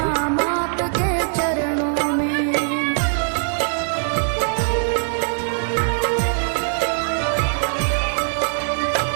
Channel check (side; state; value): left; silent; digital silence